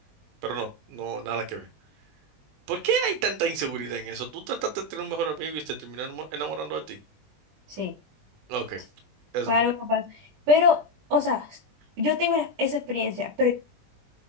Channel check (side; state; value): left; late; 20 ms